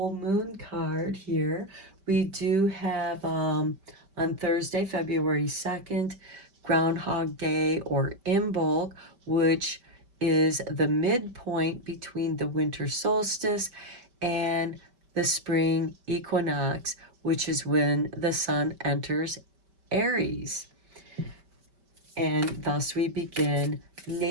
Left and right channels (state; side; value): late; left; 5.1 ms